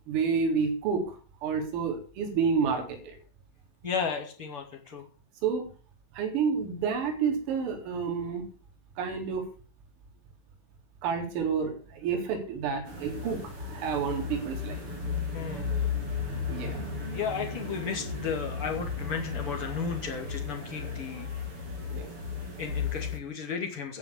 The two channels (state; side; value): late; left; 6.9 ms